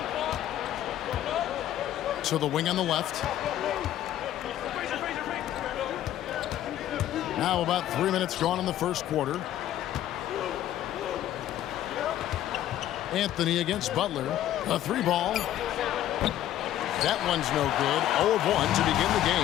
To the wing on the left. Now about 3 minutes gone in the first quarter. Anthony against Butler. A 3-ball. That one's no good. 0 of 1 to begin the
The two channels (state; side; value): quieter; right; 12.4 dB